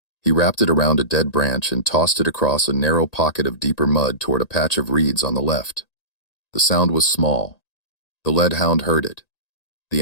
He wrapped it around a dead branch and tossed it across a narrow pocket of deeper mud toward a patch of reeds on the left. The sound was small, The lead hound heard it. The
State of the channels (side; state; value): right; late; 1.8 ms